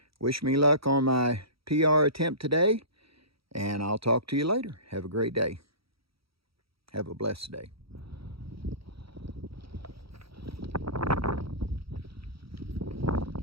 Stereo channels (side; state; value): left; late; 0.76 ms